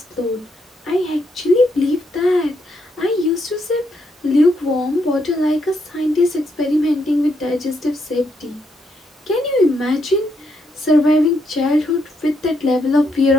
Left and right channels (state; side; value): normal; both; correlation 0.77